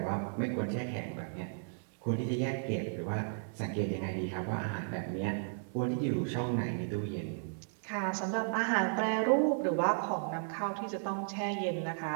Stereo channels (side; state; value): left; silent; digital silence